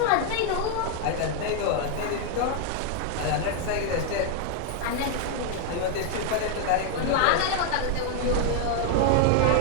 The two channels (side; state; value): both; different; correlation 0.00